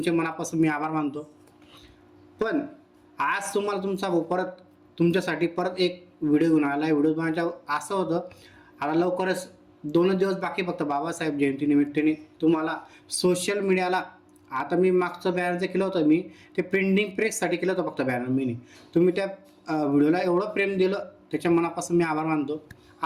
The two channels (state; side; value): identical; both; correlation 1.00